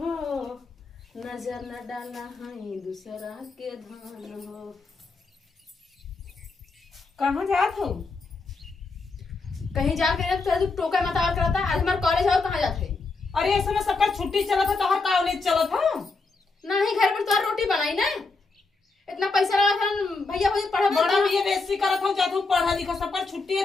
हो, नजर न डाला है दूसरा के धान हो। कहाँ जात हो? कहीं जाके तू टोका मत और करता। आज हमारे कॉलेज आओ, कहाँ जाते? अरे ऐसे में सबका छुट्टी चला था, तोहर कॉलेज चला था? नहीं, घर पर तो रोटी बनाई ना। इतना पैसा लगा था भैया मुझे पढ़ा बड़ा बीएससी करत हूं, जात हूं पढ़ा लिखा, सबका छुट्टी है,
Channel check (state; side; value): quieter; right; 3.9 dB